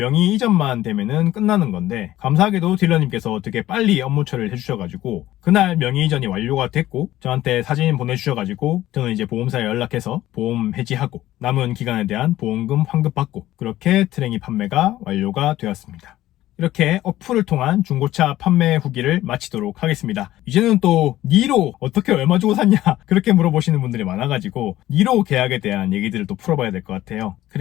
이전만 되면은 끝나는 건데, 감사하게도 딜러님께서 되게 빨리 업무 처리를 해주셔가지고 그날 명의 이전이 완료가 됐고 저한테 사진 보내주셔가지고 저는 이제 보험사에 연락해서 보험 해지하고 남은 기간에 대한 보험금 환급받고 그렇게 트레이 판매가 완료가 되었습니다. 이렇게 어플을 통한 중고차 판매 후기를 마치도록 하겠습니다. 이제는 또 니로 어떻게 얼마 주고 샀냐 그렇게 물어보시는 분들이 많아가지고 니로 계약에 대한 얘기들을 또 풀어봐야 될 것 같아요.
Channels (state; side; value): quieter; right; 14.7 dB